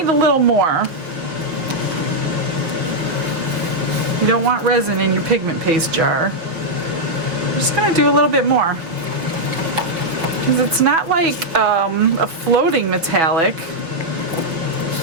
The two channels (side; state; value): left; late; 5.7 ms